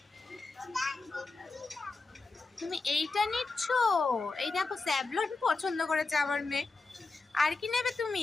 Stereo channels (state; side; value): quieter; right; 3.8 dB